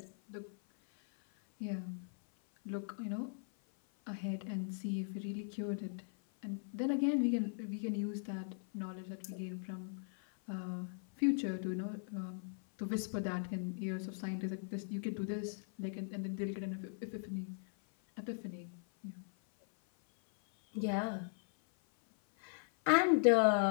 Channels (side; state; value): right; silent; 52 dB below the other